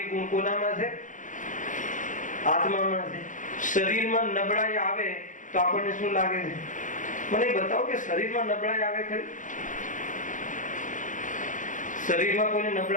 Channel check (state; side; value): late; right; 0.37 ms